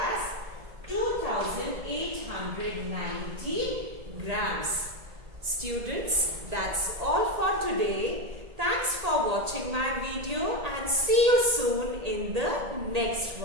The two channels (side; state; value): left; late; 1.8 ms